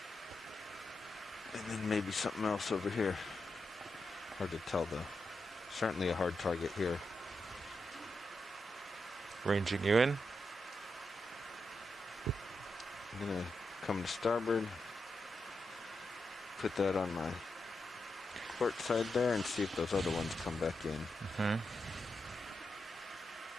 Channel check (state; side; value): normal; both; correlation 0.86